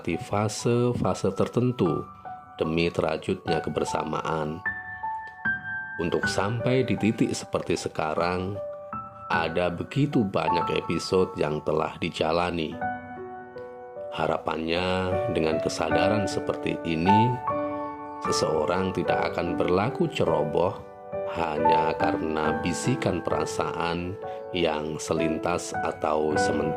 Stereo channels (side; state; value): both; identical; correlation 1.00